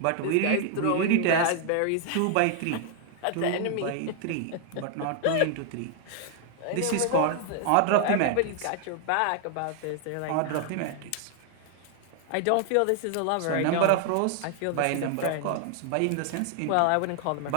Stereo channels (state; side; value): different; both; correlation 0.00